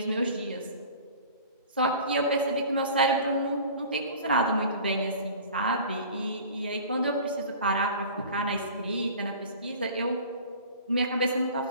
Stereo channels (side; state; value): both; inverted; correlation -0.42